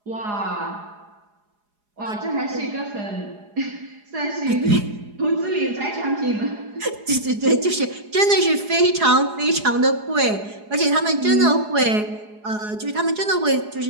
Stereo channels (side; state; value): left; late; 4.8 ms